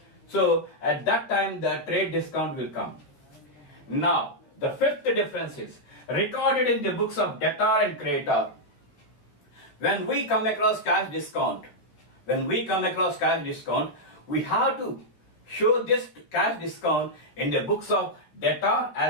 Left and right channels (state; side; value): late; right; 13 ms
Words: So at that time the trade discount will come. Now the fifth difference is recorded in the books of debtor and creditor. When we come across cash discount, we have to show this cash discount in the books of debtor